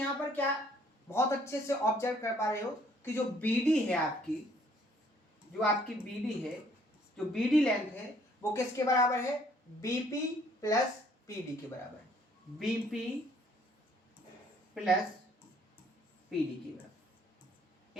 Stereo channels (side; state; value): both; normal; correlation 0.62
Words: पर क्या बहुत अच्छे से ऑब्जर्व कर पा रहे हो कि जो BD है आपकी, जो आपकी BD है, जो BD लेंथ है वो किसके बराबर है, BP प्लस PD के बराबर है। BP प्लस PD के बराबर,